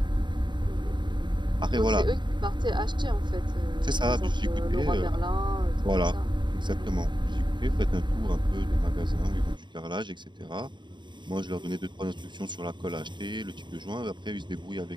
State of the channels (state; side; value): late; left; 0.22 ms